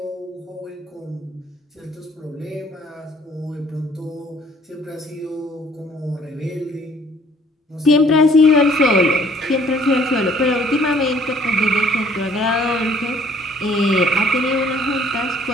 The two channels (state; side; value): normal; both; correlation 0.58